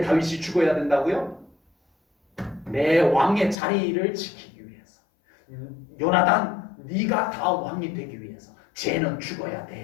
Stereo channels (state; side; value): drops out; right; at 3.6 s